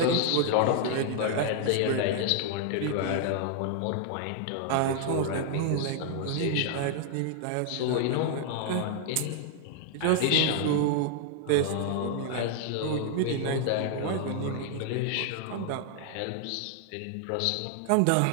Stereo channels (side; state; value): both; different; correlation 0.00